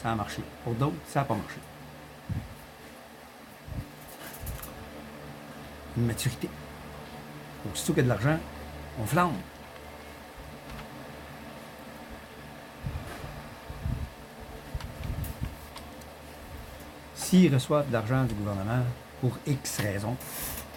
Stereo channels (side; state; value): both; identical; correlation 1.00